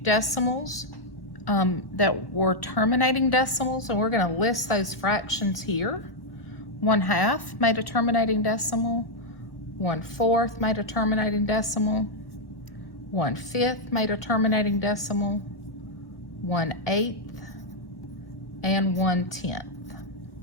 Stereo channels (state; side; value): late; right; 1.3 ms